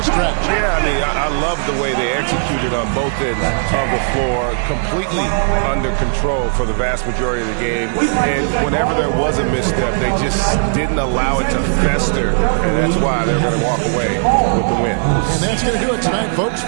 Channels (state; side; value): silent; left; digital silence